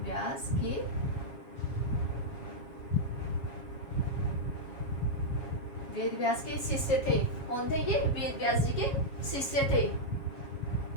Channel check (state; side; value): late; right; 7.3 ms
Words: व्यास के शिष्य थे। कौन थे ये? वेद व्यास जी के शिष्य थे।